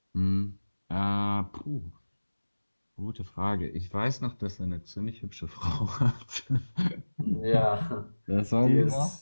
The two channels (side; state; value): both; inverted; correlation -1.00